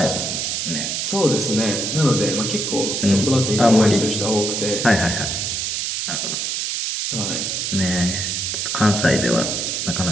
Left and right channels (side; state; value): right; noise; hiss, 1 dB below the sound